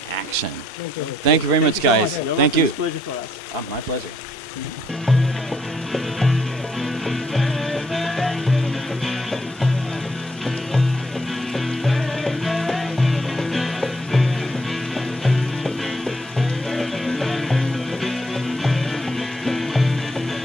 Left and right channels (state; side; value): normal; both; correlation 0.71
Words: action. Thank you very much, guys. Thank you. It's a pleasure for us. My pleasure.